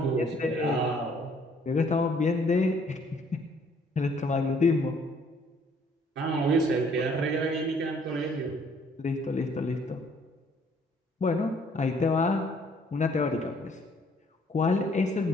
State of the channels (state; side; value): normal; both; correlation 0.62